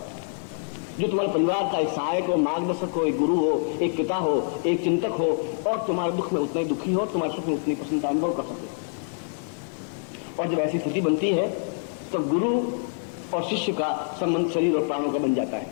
जो तुम्हारे परिवार का एक सहायक हो, मार्गदर्शक हो, एक गुरु हो, एक पिता हो, एक चिंतक हो, और तुम्हारे दुख में उतना ही दुखी हो, तुम्हारे सुख में उतनी प्रसन्नता अनुभव कर सके। और जब ऐसी स्थिति बनती है तो गुरु और शिष्य का संबंध शरीर और प्राणों का बन जाता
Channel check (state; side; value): silent; right; digital silence